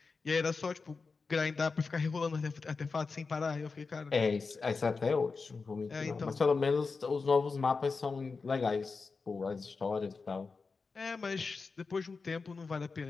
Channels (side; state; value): right; quieter; 4.5 dB